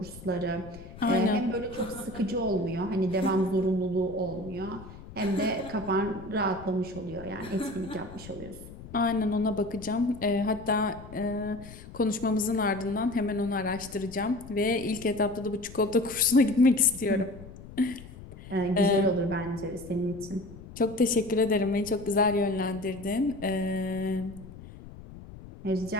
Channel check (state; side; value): noise; left; rumble, 16 dB below the sound